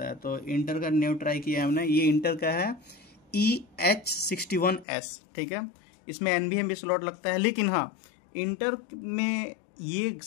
है, तो इंटर का न्यू ट्राई किया हमने। ये इंटर का है EH61S। ठीक है, इसमें NVMe भी स्लॉट लगता है, लेकिन हाँ इंटर में ये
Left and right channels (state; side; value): drops out; right; at 4.9 s